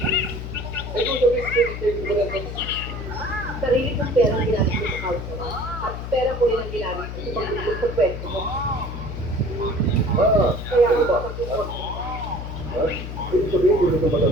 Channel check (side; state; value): left; noise; hum, 7 dB below the sound